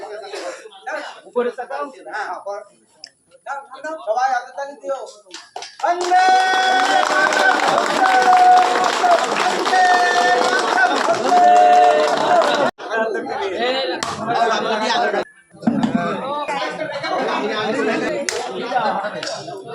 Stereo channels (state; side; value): identical; both; correlation 1.00